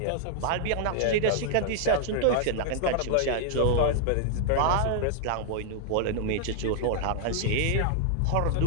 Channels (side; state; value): both; different; correlation -0.01